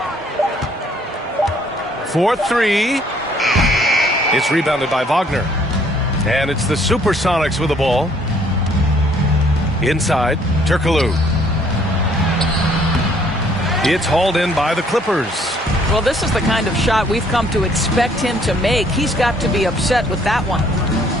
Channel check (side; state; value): both; normal; correlation 0.63